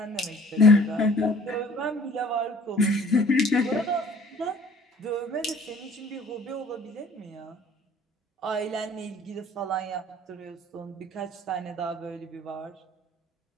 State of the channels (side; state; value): both; normal; correlation 0.53